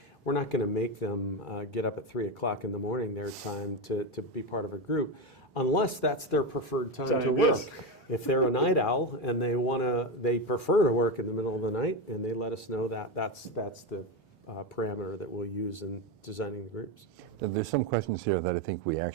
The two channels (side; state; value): both; normal; correlation 0.14